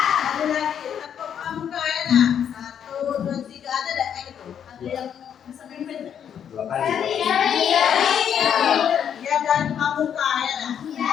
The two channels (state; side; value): quieter; right; 8.6 dB